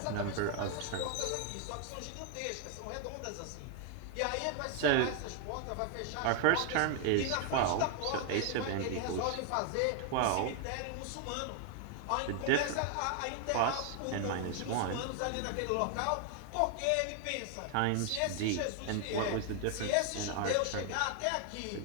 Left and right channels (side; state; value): both; different; correlation 0.00